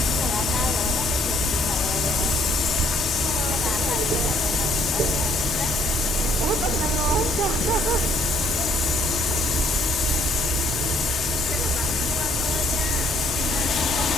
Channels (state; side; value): normal; both; correlation 0.64